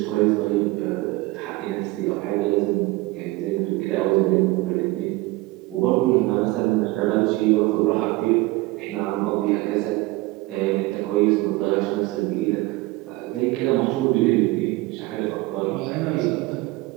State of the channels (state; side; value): quieter; left; 21.0 dB